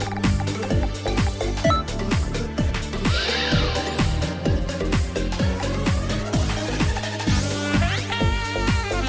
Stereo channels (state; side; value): identical; both; correlation 1.00